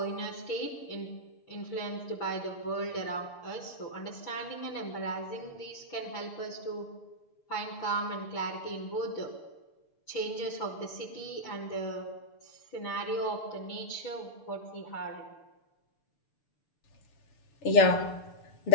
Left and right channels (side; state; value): right; late; 6.8 ms